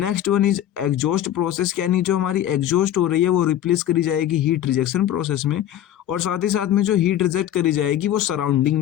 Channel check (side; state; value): right; quieter; 11.6 dB